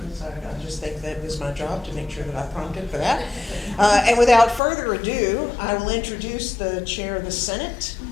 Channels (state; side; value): drops out; right; at 4.6 s